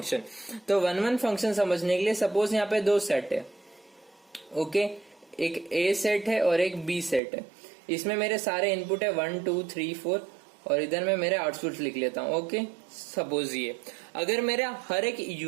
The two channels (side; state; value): left; drops out; at 7.2 s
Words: तो 1-1 फंक्शन समझने के लिए सपोज यहाँ पे 2 सेट है, ओके, एक A सेट है और एक B सेट है। इसमें मेरे सारे इनपुट है 1 2 3 4 और इधर मैं मेरे आउटपुट लिख लेता हूं। ओके, सपोज ये अगर मेरा हर एक